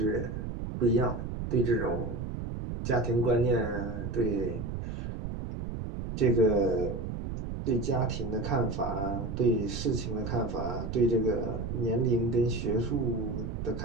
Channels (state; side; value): noise; right; rumble, 5 dB below the sound